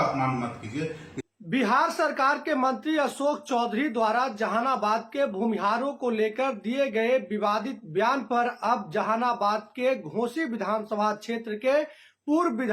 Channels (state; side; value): identical; both; correlation 1.00